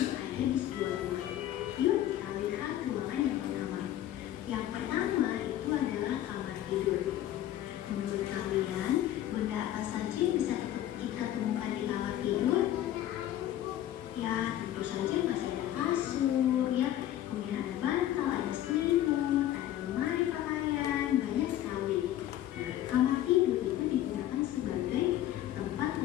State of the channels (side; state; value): right; quieter; 12.7 dB